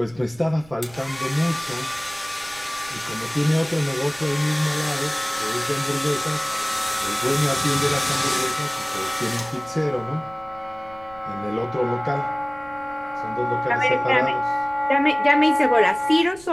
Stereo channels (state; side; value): noise; right; rumble, 23 dB below the sound